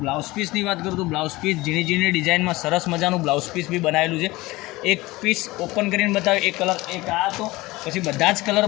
બ્લાઉઝ પીસની વાત કરું તો બ્લાઉઝ પીસ ઝીણી ડિઝાઇનમાં સરસ મજાનું બ્લાઉઝ પીસ બી બનાવેલું છે। એક પીસ ઓપન કરીને બતાવ્યું, એક કલર એક આ હતો, પછી બધા જ કલર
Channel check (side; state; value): right; quieter; 20.4 dB